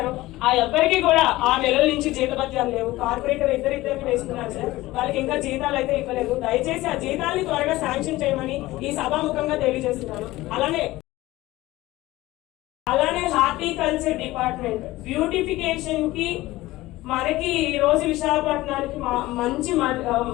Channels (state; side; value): quieter; right; 18.1 dB